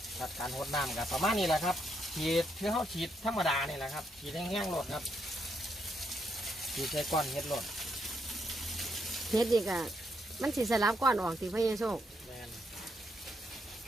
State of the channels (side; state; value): both; normal; correlation 0.77